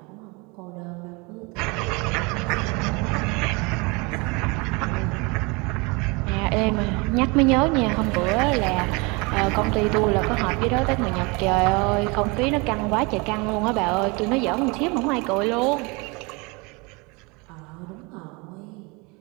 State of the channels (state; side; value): quieter; left; 27.8 dB